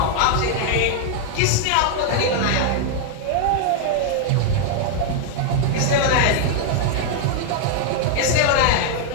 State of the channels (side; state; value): both; different; correlation 0.00